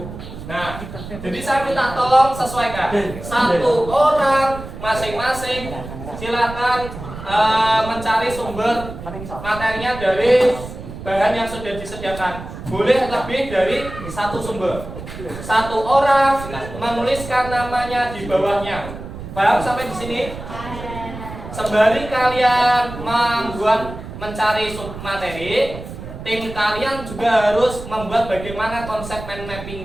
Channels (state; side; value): noise; right; rumble, 11 dB below the sound